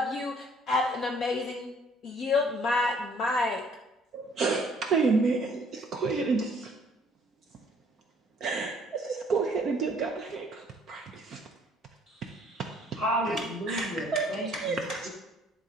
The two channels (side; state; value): both; normal; correlation 0.60